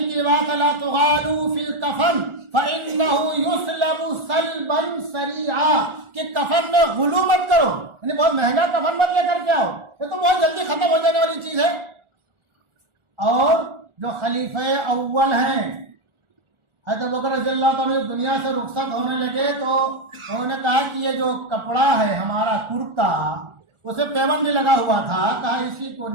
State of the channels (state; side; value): late; left; 1.4 ms